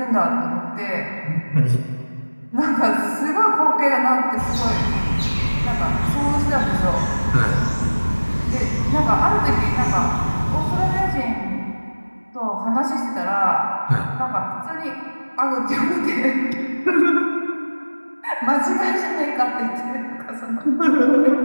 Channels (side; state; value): both; inverted; correlation -1.00